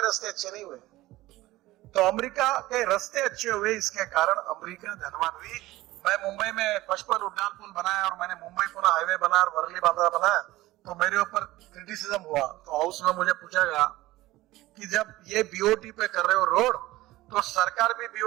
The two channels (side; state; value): left; quieter; 17.7 dB